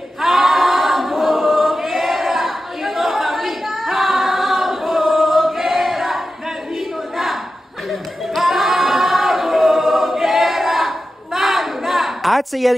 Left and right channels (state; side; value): normal; both; correlation 0.92